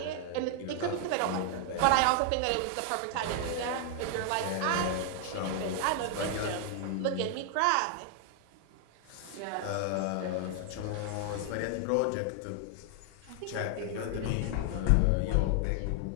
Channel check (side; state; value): both; different; correlation 0.00